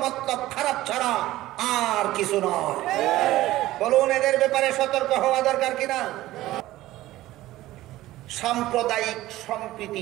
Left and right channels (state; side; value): quieter; left; 16.1 dB